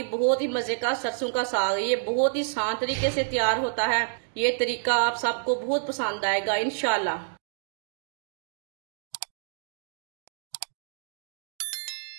बहुत ही मजे का सरसों का साग। ये बहुत ही आसान तरीके से तैयार होता है। ये तरीका आप सबको बहुत पसंद आएगा इंशाल्लाह।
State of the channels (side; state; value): left; silent; digital silence